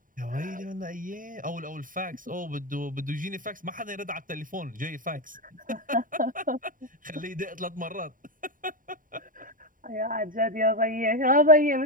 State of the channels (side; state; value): left; late; 0.39 ms